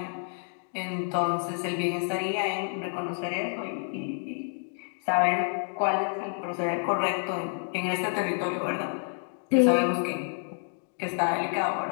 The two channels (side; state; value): right; silent; 59 dB below the other